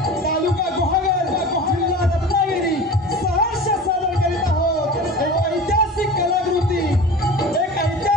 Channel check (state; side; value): normal; both; correlation 0.35